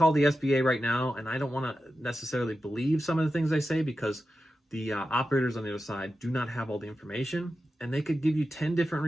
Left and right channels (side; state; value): both; normal; correlation 0.91